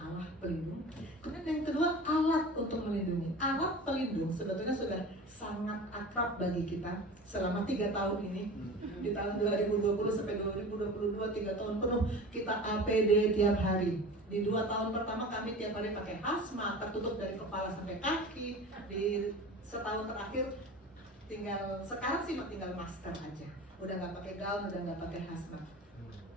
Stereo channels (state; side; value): normal; both; correlation 0.35